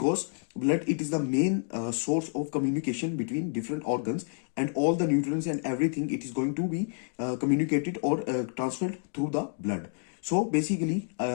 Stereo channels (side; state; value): right; silent; 58 dB below the other